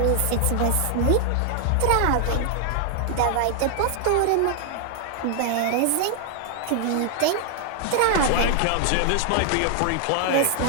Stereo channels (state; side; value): different; both; correlation 0.00